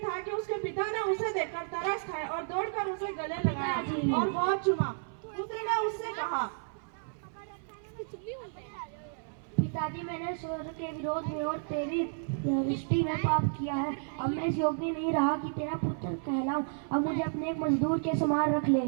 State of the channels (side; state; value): left; silent; 56 dB below the other